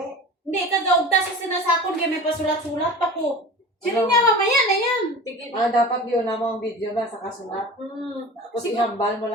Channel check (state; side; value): normal; both; correlation 0.36